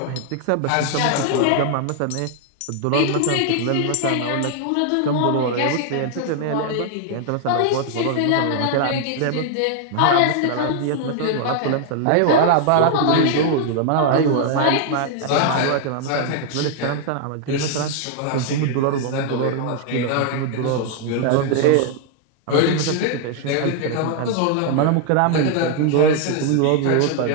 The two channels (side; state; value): both; different; correlation 0.00